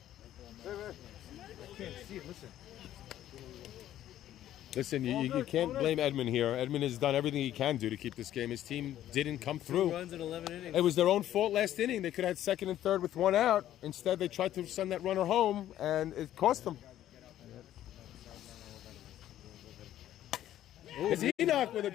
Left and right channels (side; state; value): right; quieter; 12.4 dB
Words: I can't see it. Listen. Listen, you can't blame Edmund here. Edmund has done everything he can do to keep this game. His team didn't come 2 through. runs in 11 innings. It was their own fault last inning. They could have had second and third with one out. Instead, they tried to send that runner home, and it cost them. It's Enoch with a